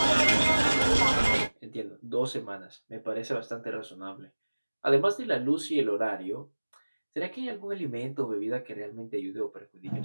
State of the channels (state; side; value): inverted; both; correlation -1.00